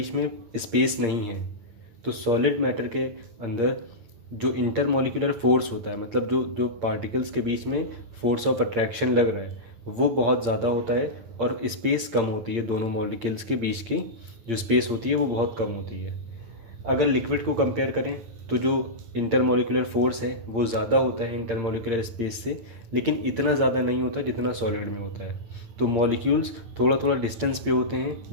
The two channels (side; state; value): left; late; 8.7 ms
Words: में स्पेस नहीं है। तो सॉलिड मैटर के अंदर जो इंटरमोलिकुलर फोर्स होता है, मतलब जो जो पार्टिकल्स के बीच में फोर्स ऑफ अट्रैक्शन लग रहा है वो बहुत ज़्यादा होता है और स्पेस कम होती है। दोनों मॉलिक्यूल्स के बीच की जो स्पेस होती है वो बहुत कम होती है। अगर लिक्विड को कंपेयर करें तो जो इंटरमोलिकुलर फोर्स है वो ज़्यादा होता है इंटरमोलिकुलर स्पेस से, लेकिन इतना ज़्यादा नहीं होता जितना सॉलिड में होता है। तो मॉलिक्यूल्स थोड़ा थोड़ा डिस्टेंस पे होते हैं,